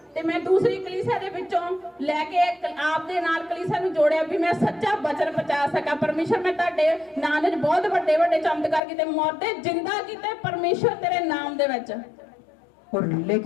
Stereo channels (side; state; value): right; drops out; at 8.8 s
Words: ते मैं दूसरी कलीसिया दे विचों लैके आप दे नाल कलीसिया नूं जोड़िया भी मैं सच्चा वचन पहुंचा सका। परमेश्वर मैं तुहाडे नाम दे बहुत बड़े बड़े चमत्कार कीते, मरदे जिंदा कीते परमेश्वर तेरे नाम दे विच। और